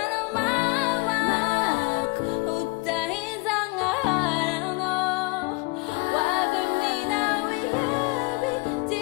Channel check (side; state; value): right; quieter; 26.4 dB